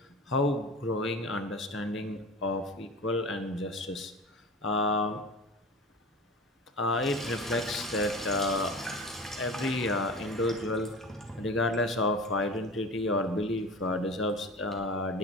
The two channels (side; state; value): both; normal; correlation 0.34